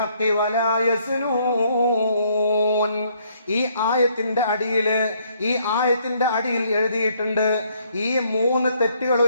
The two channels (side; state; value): both; inverted; correlation -0.67